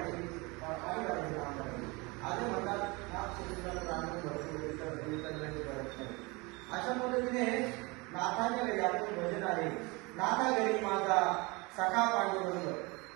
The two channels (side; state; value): left; quieter; 26.0 dB